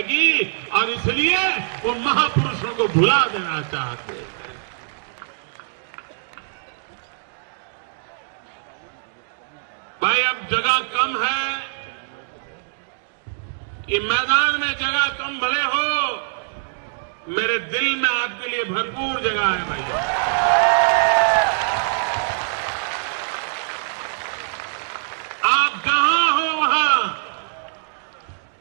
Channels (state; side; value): silent; left; digital silence